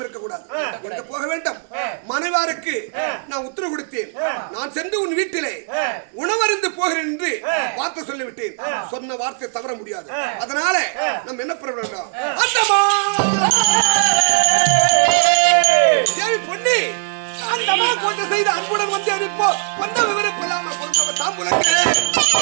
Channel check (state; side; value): silent; left; digital silence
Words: இருக்கக்கூடாது. எங்க போக வேண்டும்? மனைவாருக்கு நான் உத்தரவு கொடுத்தேன். நான் சென்று உன் வீட்டிலே உணவருந்து போகிறேன் என்று வார்த்தை சொல்லிவிட்டேன். சொன்ன வார்த்தை தவற முடியாது. அதனால நம்ம என்ன பண்ண வேண்டும்? பொன்னி அந்த அம்மா போட்டு செய்த அன்புடன் வந்து அனுப்போ வந்த விவரம் கொள்ளாமல் பொறுத்தவ தாம்புலங்க